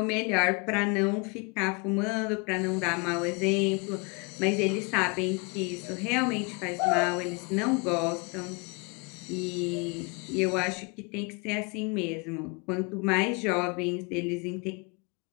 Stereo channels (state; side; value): quieter; right; 30.8 dB